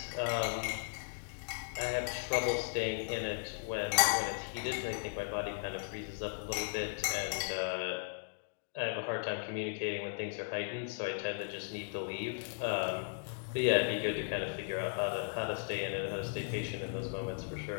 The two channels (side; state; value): right; silent; digital silence